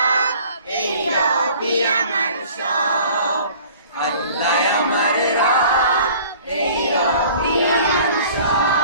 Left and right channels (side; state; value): both; inverted; correlation -0.49